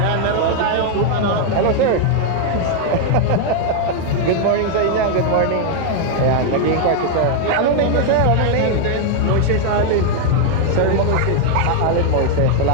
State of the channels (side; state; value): both; different; correlation 0.00